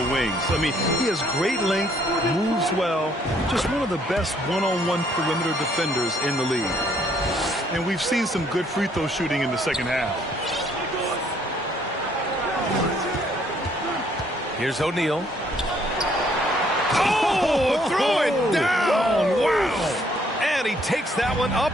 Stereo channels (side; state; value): both; normal; correlation 0.66